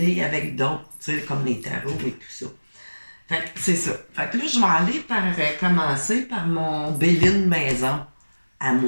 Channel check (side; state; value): both; inverted; correlation -1.00